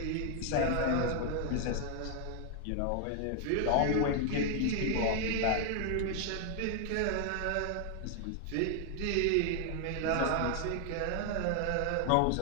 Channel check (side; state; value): both; different; correlation 0.00